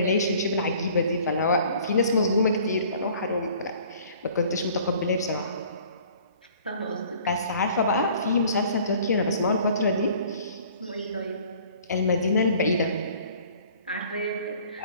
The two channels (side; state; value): both; inverted; correlation -0.52